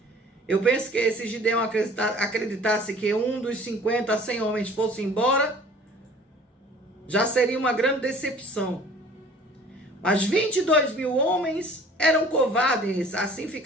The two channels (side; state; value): both; normal; correlation 0.50